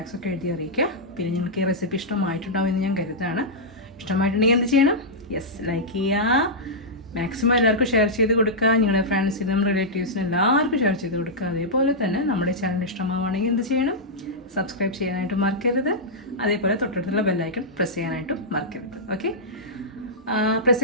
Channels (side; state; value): both; normal; correlation -0.10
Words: ഒക്കെ എഴുതി അറിയിക്കുക. പിന്നെ നിങ്ങൾക്ക് ഈ റെസിപ്പി ഇഷ്ടമായിട്ടുണ്ടാവും എന്ന് ഞാൻ കരുതാണ്. ഇഷ്ടമായിട്ടുണ്ടെങ്കിൽ എന്ത് ചെയ്യണം? യെസ്, ലൈക്ക് ചെയ്യുക. മാക്സിമം എല്ലാവർക്കും ഷെയർ ചെയ്ത് കൊടുക്കുക. നിങ്ങളുടെ ഫ്രണ്ട്സിനും റിലേറ്റീവ്സിനും എല്ലാവർക്കും ഷെയർ ചെയ്ത് കൊടുക്കുക. അതേപോലെ തന്നെ നമ്മുടെ ചാനൽ ഇഷ്ടമാവുകയാണെങ്കിൽ എന്ത് ചെയ്യണം? സബ്സ്ക്രൈബ് ചെയ്യാനായിട്ട് മറക്കരുത്. അതേപോലെ തൊട്ടടുത്തുള്ള ബെല്ലൈക്കൺ പ്രസ് ചെയ്യാനായിട്ടും മറക്കരുത്. ഓക്കെ, പ്രസ്